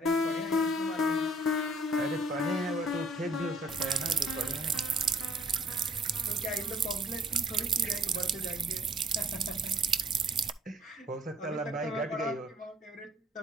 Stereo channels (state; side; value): normal; both; correlation 0.57